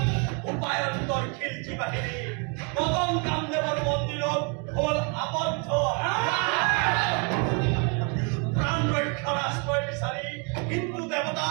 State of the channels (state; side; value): quieter; left; 34.8 dB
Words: উপায়ন্তৰ খিলজি বাহিনী মদন কামদেৱৰ মন্দিৰত হ'ল আবদ্ধ। প্ৰাণ ৰক্ষাৰ আশ্ৰয় বিচাৰি হিন্দু